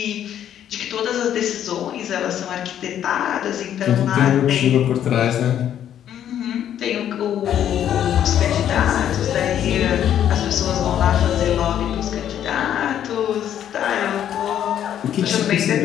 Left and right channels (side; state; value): right; quieter; 10.3 dB